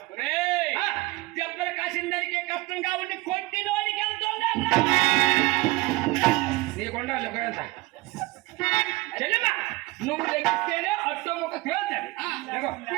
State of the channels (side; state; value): left; quieter; 21.4 dB